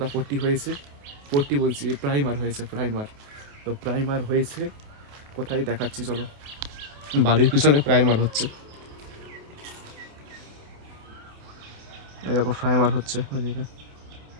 পট্টি হয়েছে। পট্টি বলছি, প্রাইমার হয়েছে, প্রাইমার। তো প্রাইমার হয়েছে কোথায় দেখাচ্ছি, চলো। বাড়ির পিছনে প্রাইমার হচ্ছে, এই দেখো প্রাইমার হচ্ছে ওদিকে।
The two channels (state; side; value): late; left; 28 ms